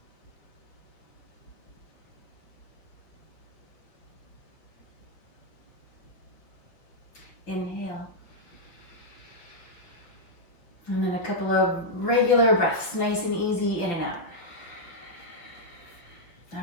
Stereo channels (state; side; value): late; right; 5.7 ms